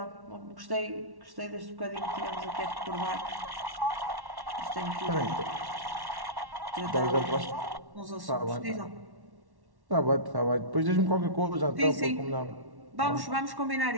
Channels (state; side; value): late; left; 1.1 ms